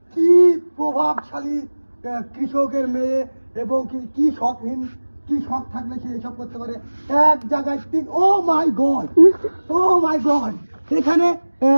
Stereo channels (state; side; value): inverted; both; correlation -1.00